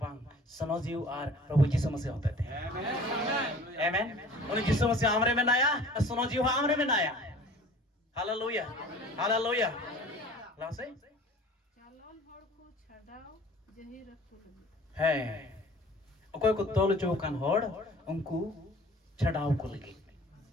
सनोजीव और प्रभु यीशु मसीह होते थे आमेन उन्हें यीशु मसीह आमरे में नाया सनोजीव आमरे में नाया हालेलुया हालेलुया लासे चालोन होड़ को छड़ाओ जही रखो लगी है कोई को तोल चौकान होड़ उनको छड़ाव को लगी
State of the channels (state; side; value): normal; both; correlation 0.46